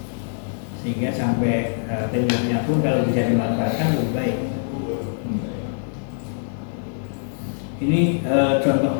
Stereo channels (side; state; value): right; silent; 63 dB below the other